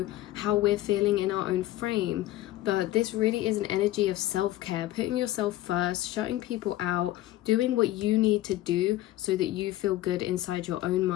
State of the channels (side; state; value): right; quieter; 15.5 dB